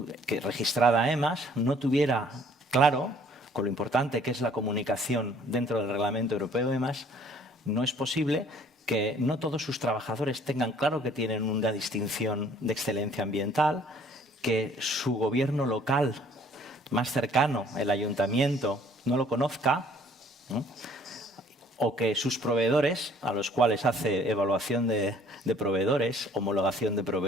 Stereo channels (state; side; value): normal; both; correlation 0.57